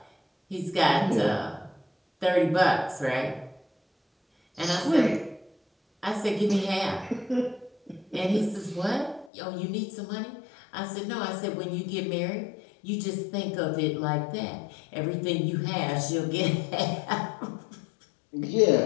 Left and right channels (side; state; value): right; drops out; at 9.3 s